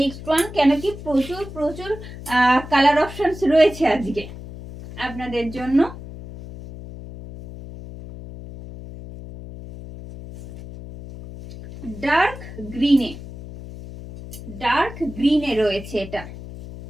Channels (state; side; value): noise; left; hum, 13 dB below the sound